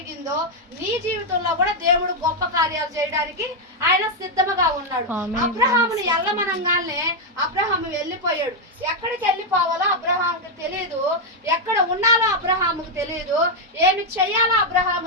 నీ జీవితంలో కూడా దేవుడు గొప్ప కార్యాలు చేయడానికి ఆయన సిద్ధముగా ఉన్నాడు. అబ్రహాముని ఎల్లమనంగానే అబ్రహాము వెళ్ళిపోయాడు. ఎక్కడికి వెళ్ళిపోవాలో అబ్రహాముకి తెలియదు, ఎక్కడ ఉండాలో అబ్రహాముకు తెలియదు, ఏమి చెయ్యాలో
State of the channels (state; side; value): normal; both; correlation 0.01